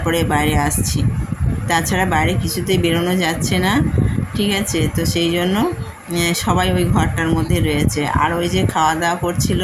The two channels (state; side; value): identical; both; correlation 1.00